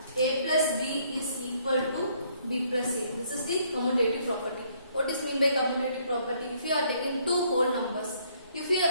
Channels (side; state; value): both; inverted; correlation -0.66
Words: a plus b is equal to b plus a. This is the commutative property. What is meant by commutative property? If you are taking two whole numbers, if you